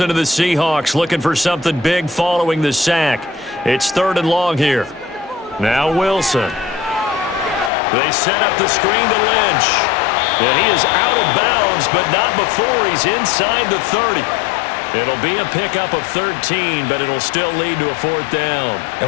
of the Seahawks looking for something big following the sack. It's 3rd and long here. Now Wilson. They set up the screen to Lynch. And he is out of bounds, but not before he's inside the 30. It'll be a pickup of 13, but it'll still lead to a 4th down.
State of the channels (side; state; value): right; drops out; at 7.7 s